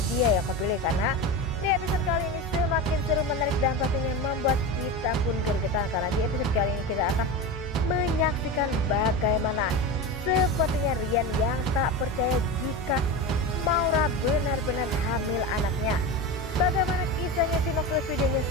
dia yang kau pilih. Karena di episode kali ini semakin seru, menarik, dan pastinya membuat kita pun gergetan. Karena di episode kali ini kita akan menyaksikan bagaimana sepertinya Rian yang tak percaya jika Maura benar-benar hamil anaknya. Bagaimana kisahnya, simak terus videonya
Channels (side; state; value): both; normal; correlation 0.23